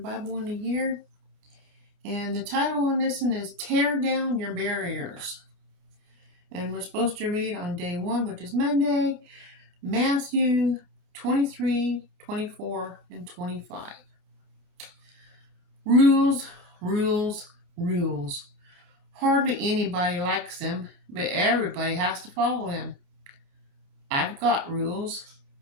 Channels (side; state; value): left; late; 28 ms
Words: in a year. And the title on this one is Tear Down Your Barriers. And we're supposed to read on day 1, which is Monday, Matthew 23, 24, and 25. Rules, rules, rules. Hardly anybody likes them, but everybody has to follow them. I've got rules.